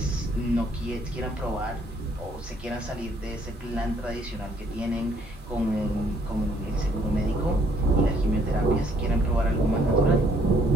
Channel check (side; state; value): both; normal; correlation 0.66